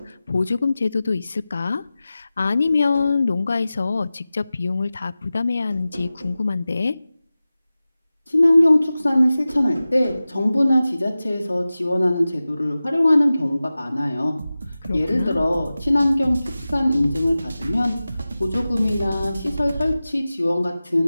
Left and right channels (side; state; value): both; inverted; correlation -0.96